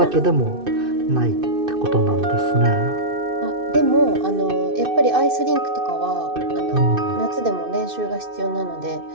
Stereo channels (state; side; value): late; left; 2.6 ms